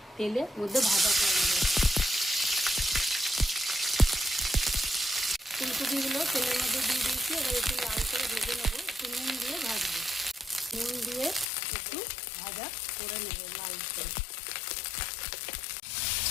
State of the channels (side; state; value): right; drops out; at 11.5 s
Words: তেলের মধ্যে ভাজা করে নেব। ফুলকপিগুলো তেলের মধ্যে দিয়ে দিয়েছি, এবার একটু লাল করে ভেজে নেবো। একটু নুন দিয়ে ভাজবো, নুন দিয়ে একটু ভাজা করে নেব লাল করে।